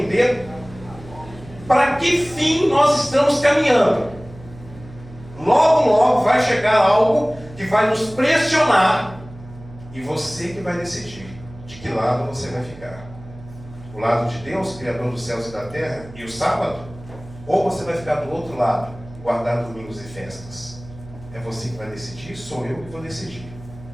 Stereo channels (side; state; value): right; noise; hum, 18 dB below the sound